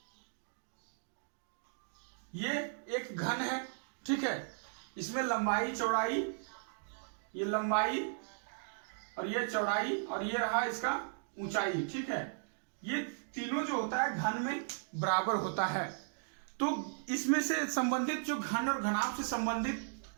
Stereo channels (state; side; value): silent; left; digital silence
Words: ये एक घन है, ठीक है, इसमें लंबाई, चौड़ाई, ये लंबाई और ये चौड़ाई और ये रहा इसका ऊंचाई, ठीक है, ये तीनों जो होता है घन में बराबर होता है। तो इसमें से संबंधित जो घन और घनाभ से संबंधित